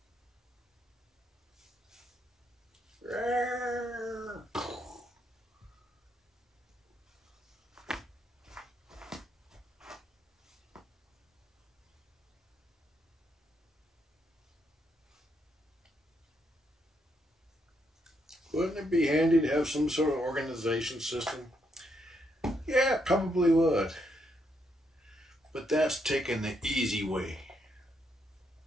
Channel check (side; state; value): both; normal; correlation 0.77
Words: Wouldn't it be handy to have some sort of organization system? Yeah, it probably would. But that's taking the easy way.